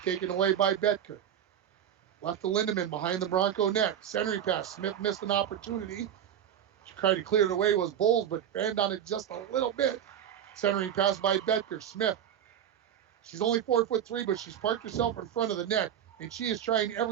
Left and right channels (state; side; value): quieter; left; 9.6 dB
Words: taken away by Betker. Left to Lindemann behind the Bronco net. Centering pass. Smith missed an opportunity. She tried to clear it away was Bowles, but banged on it just a little bit. Centering pass by Betker. Smith. She's only 4'3", but she's parked herself in front of the net, and she is trying